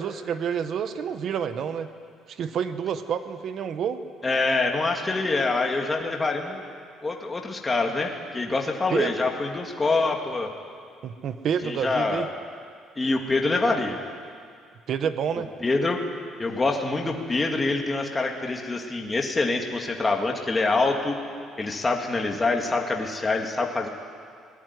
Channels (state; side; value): normal; both; correlation 0.81